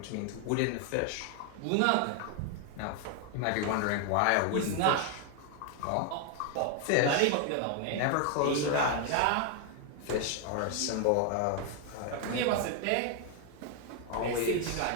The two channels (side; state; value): both; different; correlation 0.00